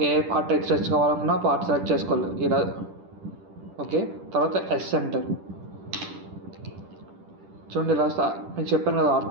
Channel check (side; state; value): left; late; 10 ms